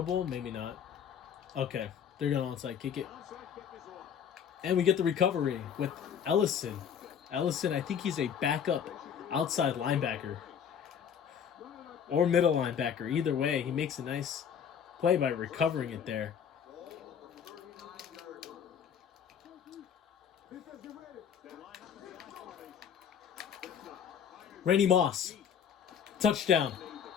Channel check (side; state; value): right; quieter; 8.0 dB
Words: Maybe not. Okay. They're going to onside kick it. And we get the recovery with Ellison. Ellison, I think he's a backup outside linebacker. Or middle linebacker. Either way, he makes a nice play by recovering it there. Randy Moss. Touchdown.